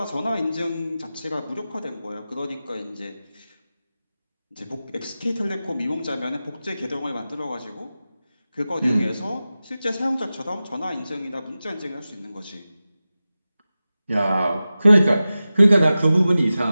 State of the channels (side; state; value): both; inverted; correlation -0.95